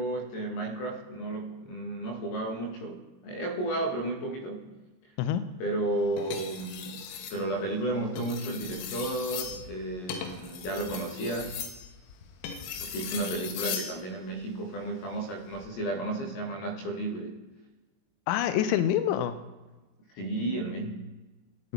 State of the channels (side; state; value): right; late; 23 ms